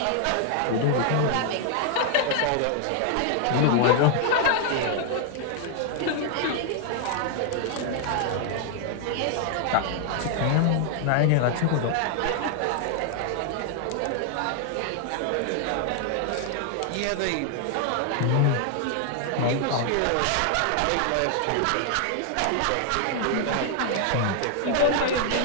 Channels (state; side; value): different; both; correlation 0.00